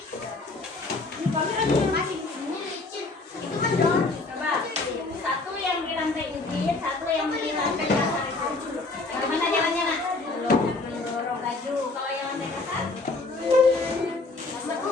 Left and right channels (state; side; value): quieter; right; 3.4 dB